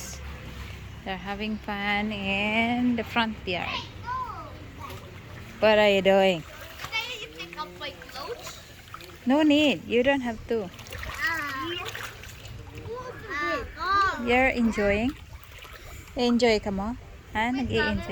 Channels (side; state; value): both; identical; correlation 1.00